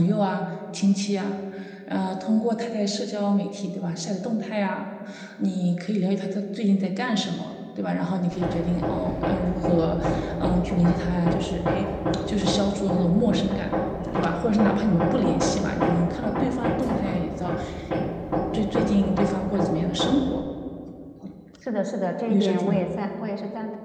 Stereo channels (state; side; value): identical; both; correlation 1.00